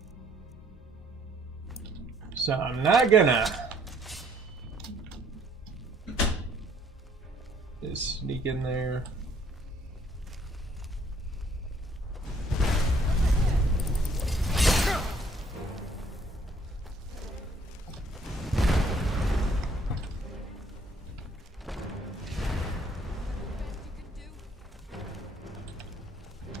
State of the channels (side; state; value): both; normal; correlation 0.63